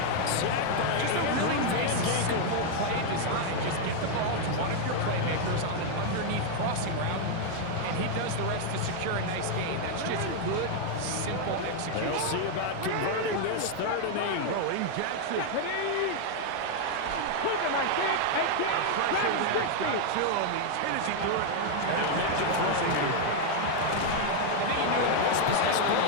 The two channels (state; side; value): different; both; correlation 0.00